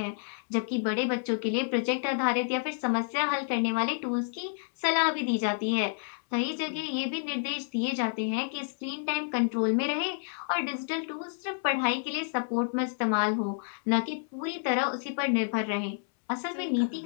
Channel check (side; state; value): right; silent; 58 dB below the other